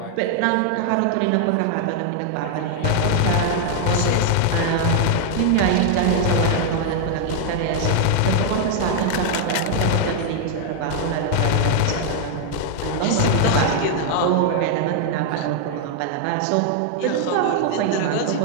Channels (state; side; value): different; both; correlation 0.00